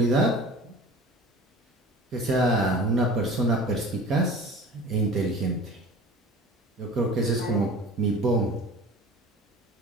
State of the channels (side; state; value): both; normal; correlation 0.39